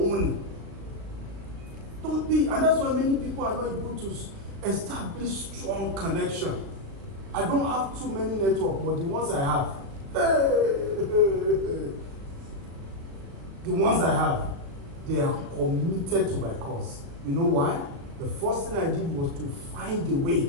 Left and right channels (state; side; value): late; left; 37 ms